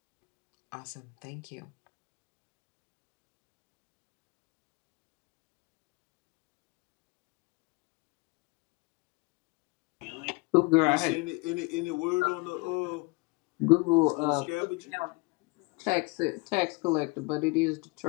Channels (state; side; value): quieter; right; 27.0 dB